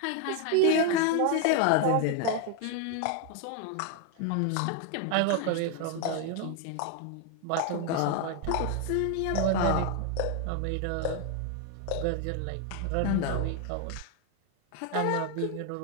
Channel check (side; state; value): both; different; correlation 0.01